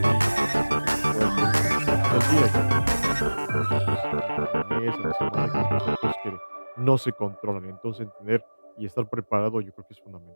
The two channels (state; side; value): inverted; both; correlation -1.00